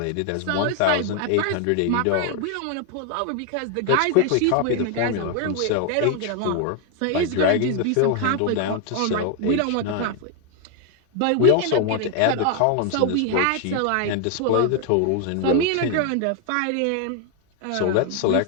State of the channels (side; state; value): both; different; correlation 0.00